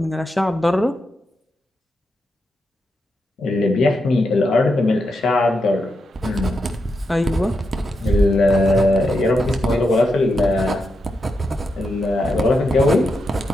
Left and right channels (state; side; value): normal; both; correlation 0.85